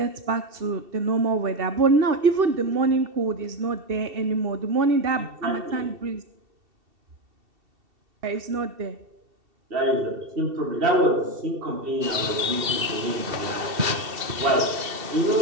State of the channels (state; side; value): late; left; 2.7 ms